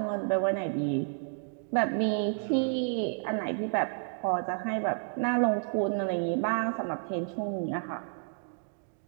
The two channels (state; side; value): silent; left; digital silence